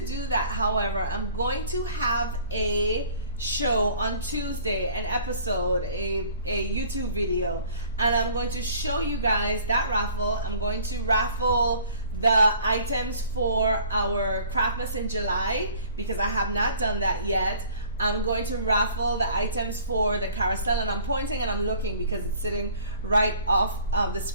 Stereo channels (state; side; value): inverted; both; correlation -0.51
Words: do that, however, I'm going to have a show on Tuesday, an episode, a YouTube video, and I'm going to show you guys that raffle. I'm going to raffle the items for our Craftmas in July because I have not done that yet. I'm going to raffle the items for the carousel, and I'm pointing and I'm looking because it's sitting right off of the